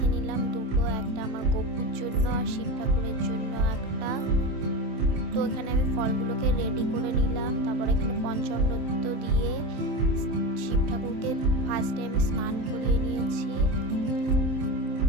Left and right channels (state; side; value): late; left; 27 ms